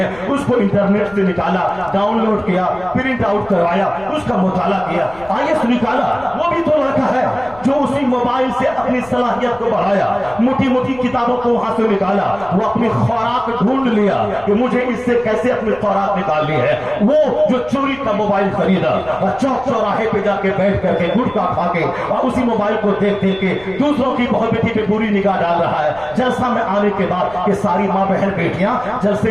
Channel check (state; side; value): noise; left; rumble, 22 dB below the sound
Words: اس کو انٹرنیٹ سے نکالا، ڈاؤن لوڈ کیا، پرنٹ آؤٹ کروایا، اس کا مطالعہ کیا، IAS نکالا. وہ بھی تو لڑکا ہے جو اسی موبائل سے اپنی صلاحیت کو بڑھایا، موٹی موٹی کتابوں کو وہاں سے نکالا، وہ اپنی خوراک ڈھونڈ لیا کہ مجھے اس سے کیسے اپنی خوراک نکالنی ہے. وہ جو چوری کا موبائل خریدا اور چوک چوراہے پہ جا کے بیٹھ کر کے گٹکا کھا کے اور اسی موبائل کو دیکھ دیکھ کے دوسروں کی بہو بیٹی پہ بری نگاہ ڈال رہا ہے. جلسہ میں آنے کے بعد کہ ساری ماں بہن بیٹیاں